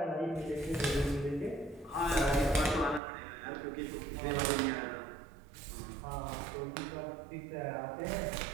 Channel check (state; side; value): drops out; left; at 3.0 s